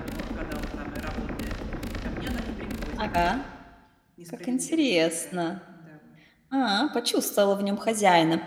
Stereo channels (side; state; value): both; identical; correlation 1.00